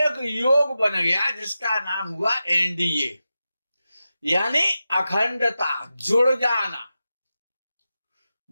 योग बन गया जिसका नाम हुआ एनडीए, यानी अखंडता, जुड़ जाना।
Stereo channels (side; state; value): both; inverted; correlation -0.92